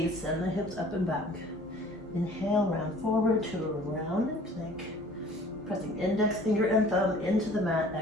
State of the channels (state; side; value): normal; both; correlation 0.51